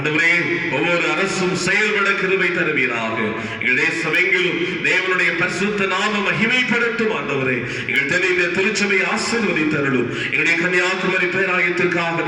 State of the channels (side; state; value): both; identical; correlation 1.00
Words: ஒவ்வொரு அரசும் செயல்பட கிருபை தருவீராக. எங்கள் தேசமெங்கிலும் தேவனுடைய பரிசுத்த நாம மகிமைப்படுத்தும் ஆண்டவரே. எங்கள் தென்னிந்திய திருச்சபை ஆசீர்வதித்தருளும். எங்களுடைய கன்னியாகுமரி பேராயத்திற்காக